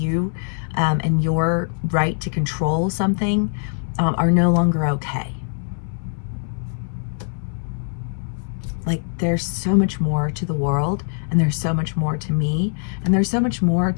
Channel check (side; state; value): right; silent; 64 dB below the other